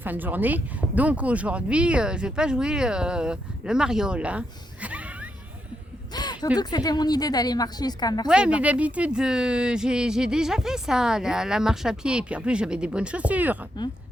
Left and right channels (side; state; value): both; normal; correlation 0.81